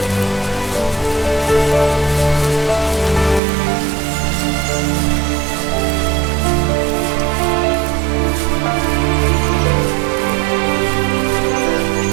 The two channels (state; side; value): drops out; left; at 3.4 s